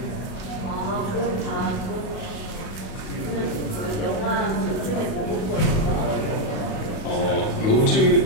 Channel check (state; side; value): late; right; 37 ms